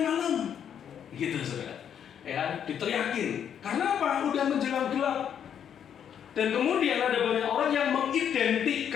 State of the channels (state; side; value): quieter; right; 8.7 dB